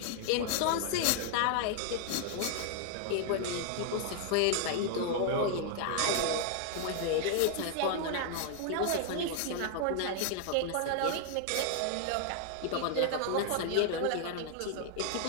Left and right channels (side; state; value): both; different; correlation 0.00